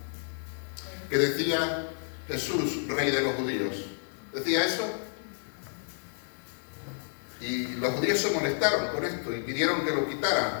Que decía Jesús, Rey de los judíos. ¿Decía eso? Y los judíos se molestaron con esto y pidieron que lo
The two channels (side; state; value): right; silent; digital silence